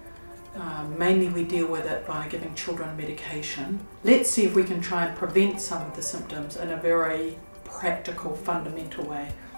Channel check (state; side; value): inverted; both; correlation -1.00